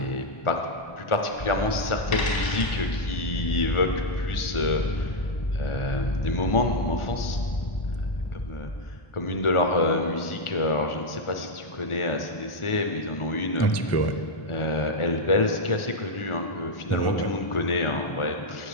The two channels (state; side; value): late; right; 1.4 ms